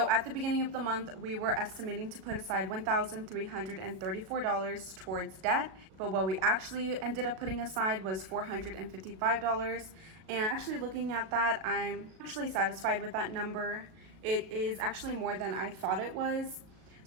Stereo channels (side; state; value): left; late; 37 ms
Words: at the beginning of the month, we were estimating to put aside $1,334 towards debt, but what we actually ended up putting aside was $455. And actually looking at that, I'm actually satisfied with that number. It is actually more than I thought it was.